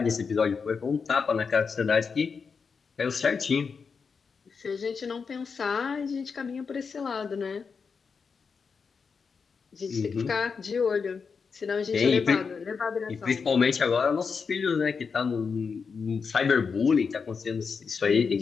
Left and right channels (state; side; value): quieter; right; 5.5 dB